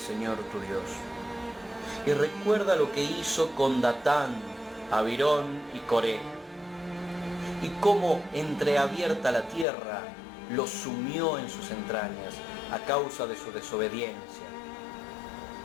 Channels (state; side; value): drops out; right; at 9.7 s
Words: tu Dios, y recuerda lo que hizo con Datán, Abirón y Coré, y cómo entreabierta la tierra los sumió en sus entrañas a causa de su desobediencia.